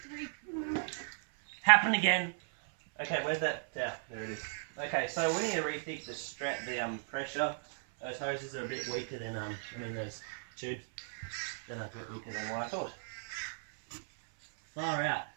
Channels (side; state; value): left; silent; 54 dB below the other